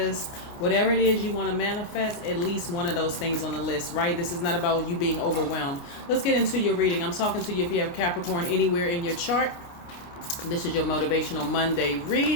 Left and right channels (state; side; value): late; right; 29 ms